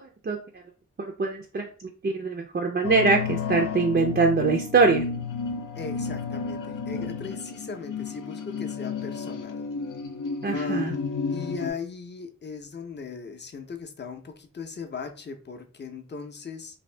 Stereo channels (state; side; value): normal; both; correlation 0.11